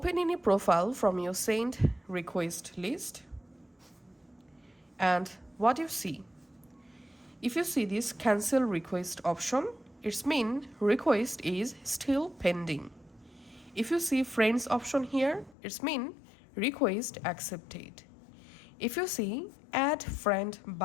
any profile from your sent request list, and what you see. If you see this cancel request option, it means request is still pending. If you see friends option here, it means request accepted. If you see add friend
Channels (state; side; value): drops out; right; at 15.6 s